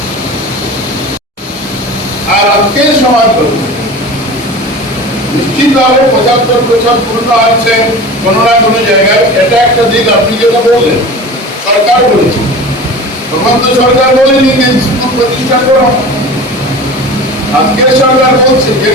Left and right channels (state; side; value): normal; both; correlation 0.36